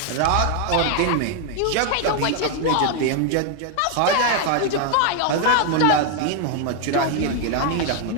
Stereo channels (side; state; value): both; different; correlation 0.00